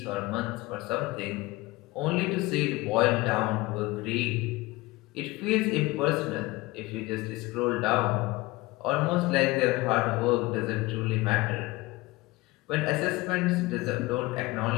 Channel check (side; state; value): right; quieter; 20.9 dB